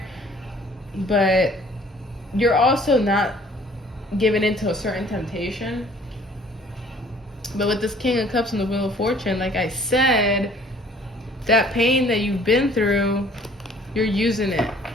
But you're also not giving into a certain temptation. But with this King of Cups and the Wheel of Fortune, like I said, that pain that you've been through, you're using it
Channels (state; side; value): normal; both; correlation 0.55